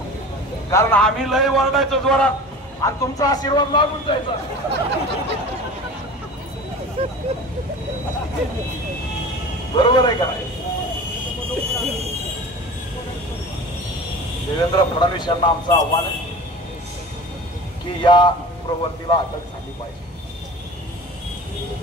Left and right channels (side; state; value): both; normal; correlation 0.37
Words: कारण आम्ही लय वरडायचो जोरात आणि तुमचा आशीर्वाद लागून जायचा. बरोबर आहे का? फडणवीस यांना आमचं आव्हान आहे की या प्रवृत्तीला अटक झाली पाहिजे.